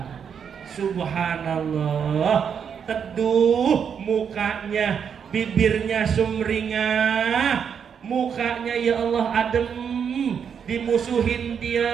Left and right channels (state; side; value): quieter; left; 7.3 dB